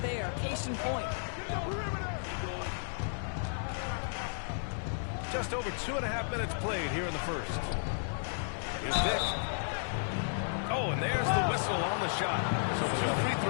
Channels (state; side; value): silent; right; 55 dB below the other